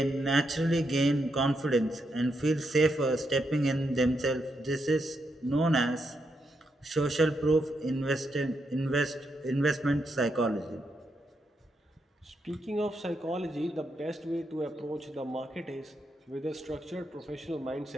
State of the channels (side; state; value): both; normal; correlation 0.81